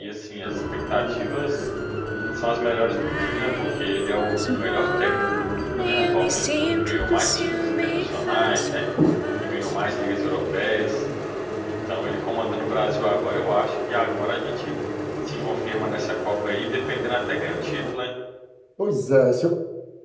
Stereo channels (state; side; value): identical; both; correlation 1.00